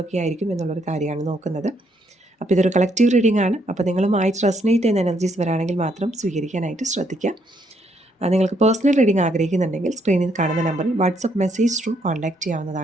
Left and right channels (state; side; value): normal; both; correlation 0.73